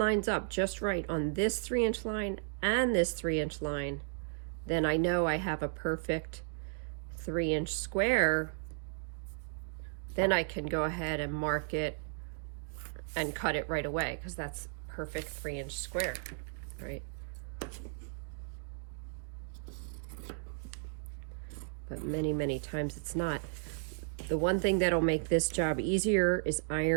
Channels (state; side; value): silent; left; digital silence